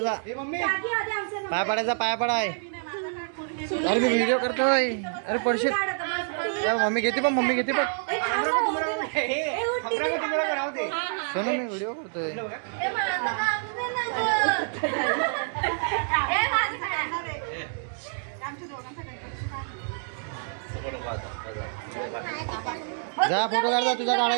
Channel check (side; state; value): left; silent; 60 dB below the other